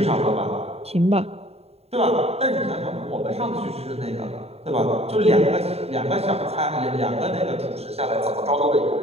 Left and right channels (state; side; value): late; left; 0.30 ms